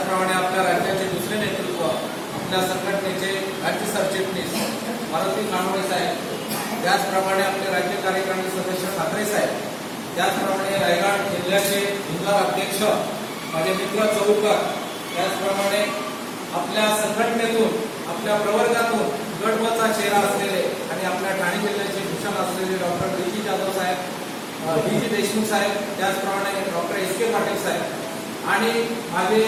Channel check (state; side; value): identical; both; correlation 1.00